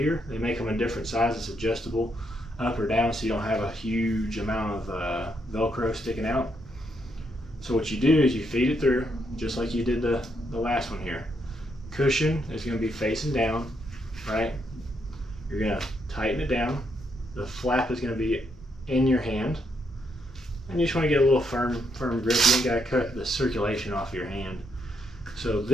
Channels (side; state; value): both; normal; correlation 0.77